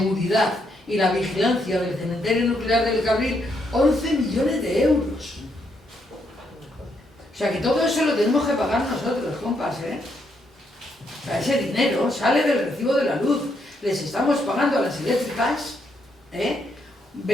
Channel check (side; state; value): both; normal; correlation 0.76